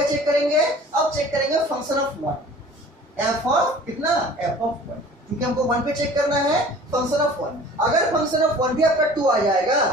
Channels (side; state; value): both; normal; correlation 0.46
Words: चेक करेंगे, अब चेक करेंगे फंक्शन ऑफ 1, f ऑफ कितना, f ऑफ 1, क्योंकि हमको 1 पे चेक करना है फंक्शन ऑफ 1। अगर फंक्शन ऑफ 1 भी आपका 2 आ जाएगा